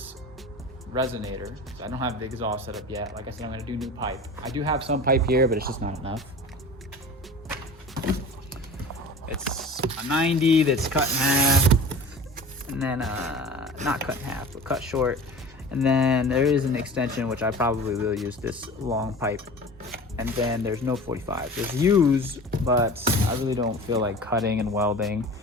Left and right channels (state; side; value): normal; both; correlation 0.37